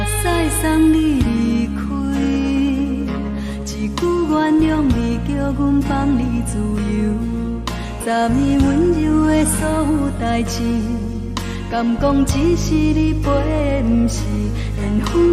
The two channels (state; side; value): identical; both; correlation 1.00